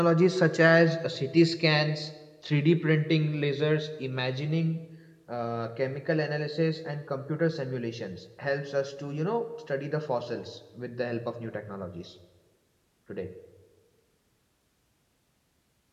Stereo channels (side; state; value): both; identical; correlation 1.00